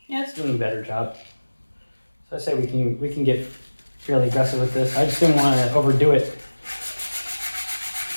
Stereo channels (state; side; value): inverted; both; correlation -1.00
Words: Yeah, it's doing a better job. So I say we can get fairly aggressive with this. I just didn't want to overdo it.